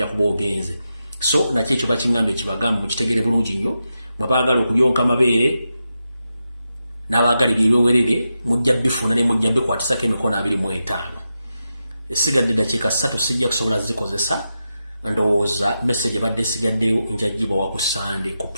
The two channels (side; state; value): both; inverted; correlation -0.89